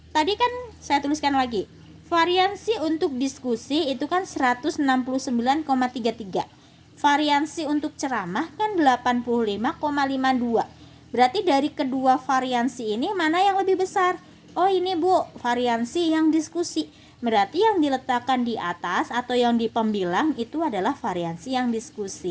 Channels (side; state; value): both; identical; correlation 1.00